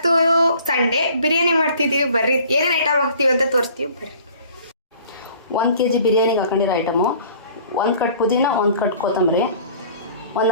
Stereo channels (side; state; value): both; inverted; correlation -0.51